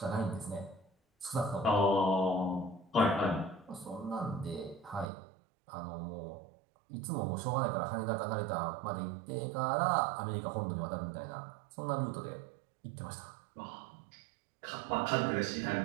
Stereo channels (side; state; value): left; drops out; at 5.1 s